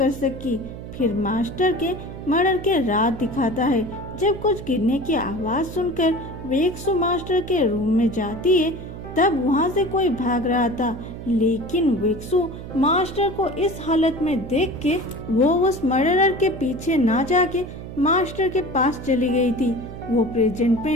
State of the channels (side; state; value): right; noise; hum, 11 dB below the sound